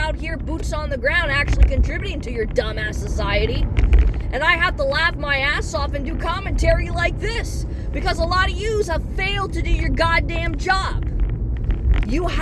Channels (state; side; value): identical; both; correlation 1.00